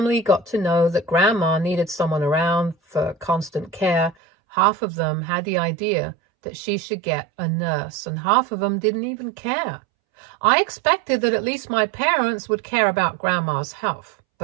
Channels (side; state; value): left; drops out; at 4.2 s